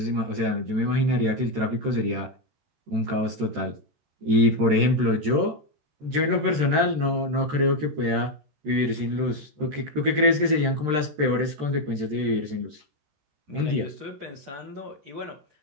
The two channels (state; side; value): late; left; 13 ms